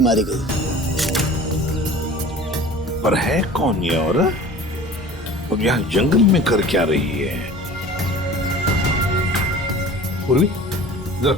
गई। पर है कौन ये औरत? और यहाँ जंगल में कर क्या रही है? पूर्वी, जरा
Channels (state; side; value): normal; both; correlation 0.42